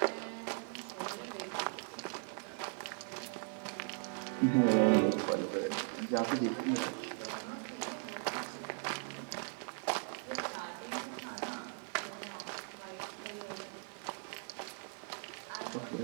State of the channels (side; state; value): left; silent; 52 dB below the other